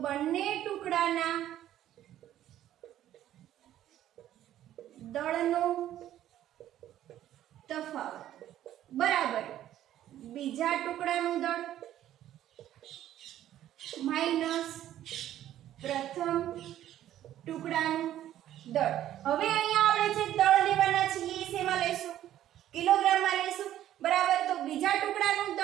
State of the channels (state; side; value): quieter; left; 12.3 dB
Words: બંને ટુકડાના દળનો તફાવત બરાબર બીજા ટુકડાનું દળ માઈનસ પ્રથમ ટુકડાનું દળ. હવે અહીંયા આપણે જે દળ લેવાના છે એ શેમાં લેશું? કિલોગ્રામમાં લેશું. બરાબર. તો બીજા ટુકડાનું